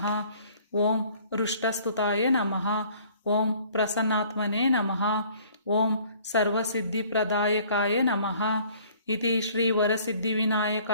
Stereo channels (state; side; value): inverted; both; correlation -0.55